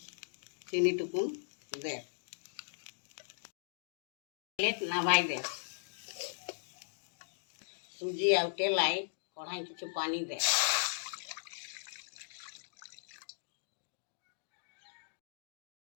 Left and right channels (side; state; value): right; silent; digital silence